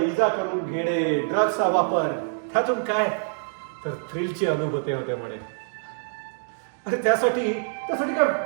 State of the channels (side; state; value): left; silent; digital silence